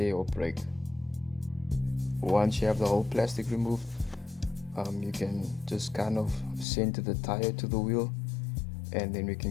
or break. Once you have the whole plastic removed, you can just kind of center the tire to the wheel, and then we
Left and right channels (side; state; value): right; drops out; at 6.7 s